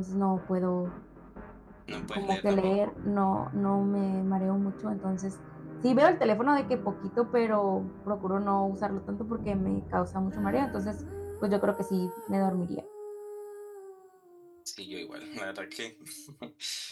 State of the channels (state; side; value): identical; both; correlation 1.00